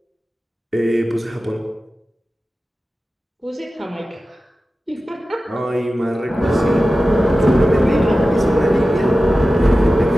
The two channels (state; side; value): normal; both; correlation 0.94